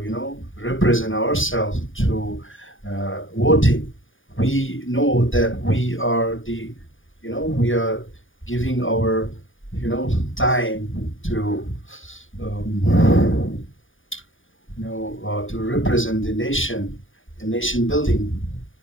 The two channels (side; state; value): right; late; 0.57 ms